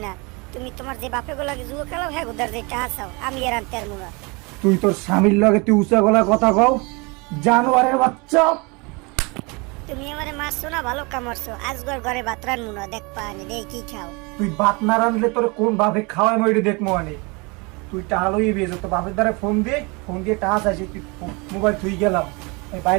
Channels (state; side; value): quieter; left; 28.5 dB